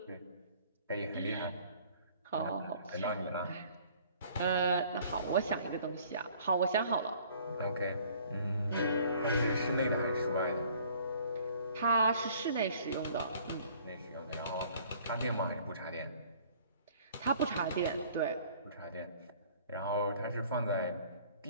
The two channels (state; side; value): inverted; both; correlation -0.55